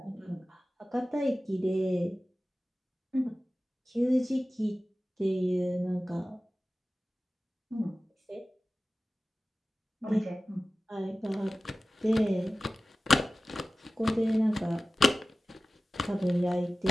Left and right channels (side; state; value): both; normal; correlation 0.96